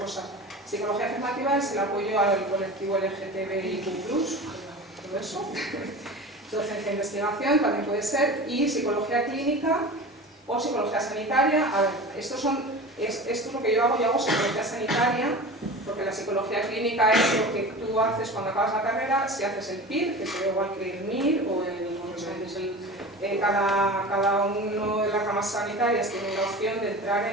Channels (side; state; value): both; normal; correlation 0.34